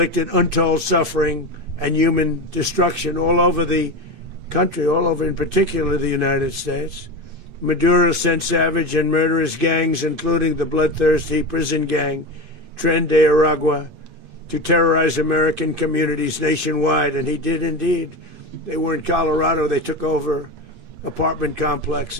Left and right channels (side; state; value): left; late; 8.4 ms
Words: untold suffering and human destruction all over the country, all over in particular the United States. Maduro sent savage and murderous gangs, including the bloodthirsty prison gang Tren de Aragua, to terrorize American communities nationwide, and he did indeed. They were in Colorado. They took over apartment